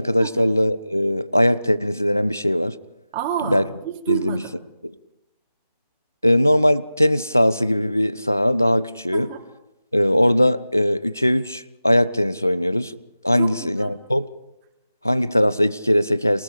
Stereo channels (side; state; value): both; inverted; correlation -0.95